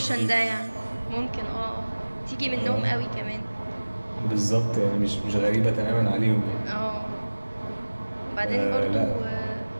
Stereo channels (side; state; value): both; inverted; correlation -1.00